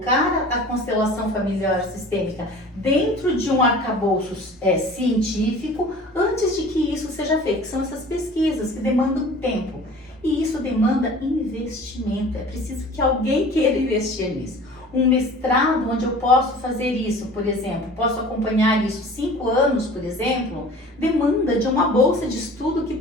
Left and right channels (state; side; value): normal; both; correlation 0.43